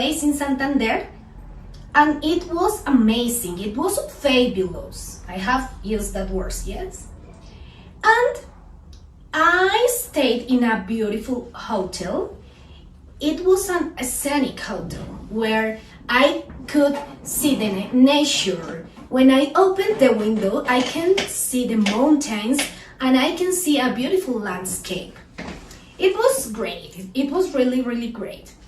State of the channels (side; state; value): both; identical; correlation 1.00